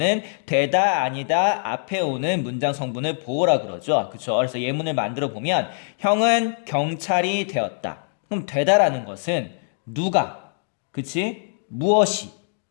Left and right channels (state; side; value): silent; right; digital silence